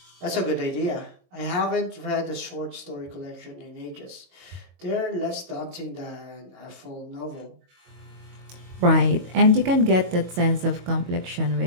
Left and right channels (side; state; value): left; late; 22 ms